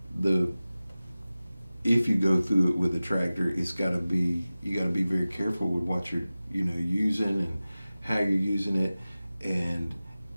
if you go through it with a tractor, you got to be very careful with what you're using and how you're using it. And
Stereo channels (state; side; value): inverted; both; correlation -0.96